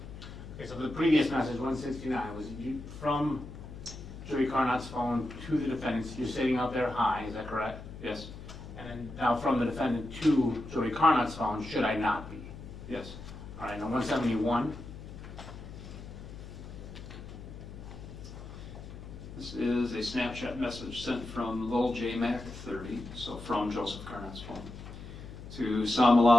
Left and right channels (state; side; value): noise; left; hum, 13 dB below the sound